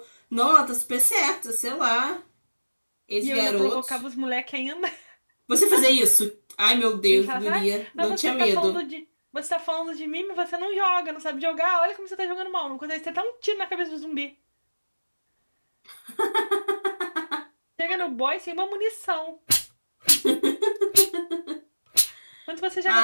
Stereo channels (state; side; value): inverted; both; correlation -1.00